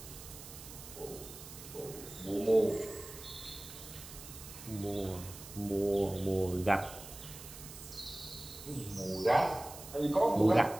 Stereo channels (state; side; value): noise; right; hiss, 14 dB below the sound